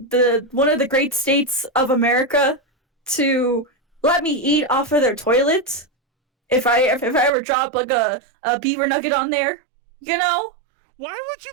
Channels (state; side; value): drops out; left; at 7.3 s